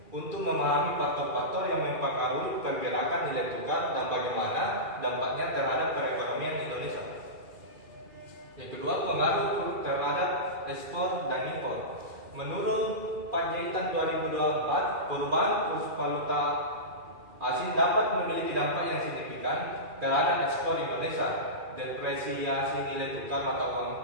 untuk memahami faktor-faktor yang mempengaruhi pergerakan nilai tukar dan bagaimana dampaknya terhadap perekonomian Indonesia. Yang kedua, pengaruh terhadap ekspor dan impor. Menurut Panjaitan 2024, perubahan kurs valuta asing dapat memiliki dampak yang signifikan terhadap ekspor Indonesia. Depresiasi nilai tukar mata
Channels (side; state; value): left; late; 2.4 ms